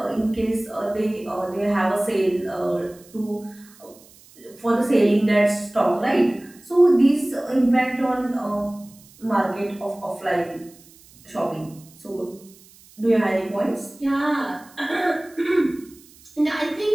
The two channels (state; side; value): noise; right; hiss, 25 dB below the sound